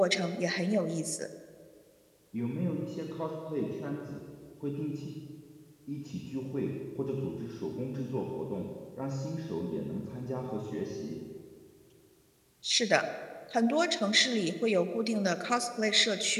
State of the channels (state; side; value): identical; both; correlation 1.00